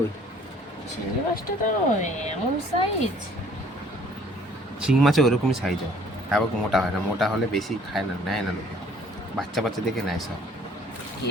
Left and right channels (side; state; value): both; normal; correlation 0.57